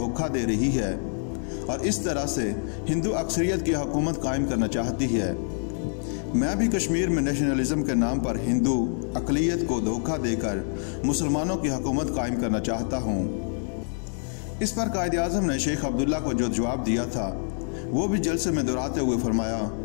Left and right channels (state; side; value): silent; right; 59 dB below the other